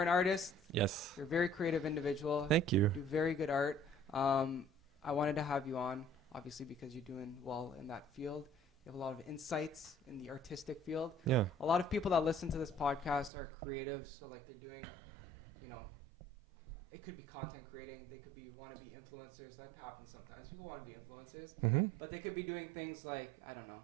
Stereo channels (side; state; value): left; drops out; at 13.3 s